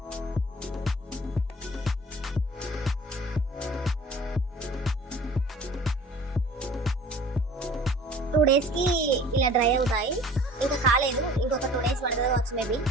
టూ డేస్ కి ఇలా డ్రై అవుతాయి. ఇంకా కాలేదు, ఇంకొక 2 days పడుతుంది కావచ్చు మేబీ.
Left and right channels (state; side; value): normal; both; correlation 0.47